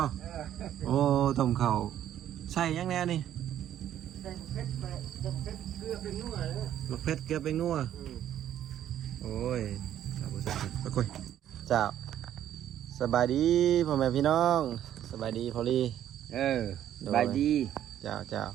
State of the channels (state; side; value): quieter; left; 11.1 dB